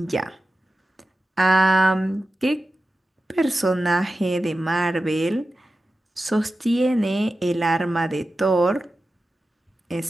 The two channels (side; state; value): both; normal; correlation 0.93